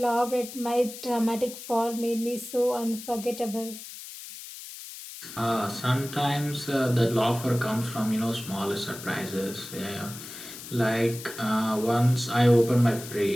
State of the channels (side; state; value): left; noise; hiss, 12 dB below the sound